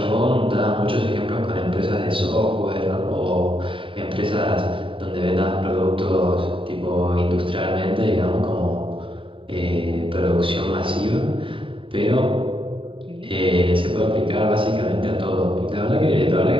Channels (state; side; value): late; left; 0.25 ms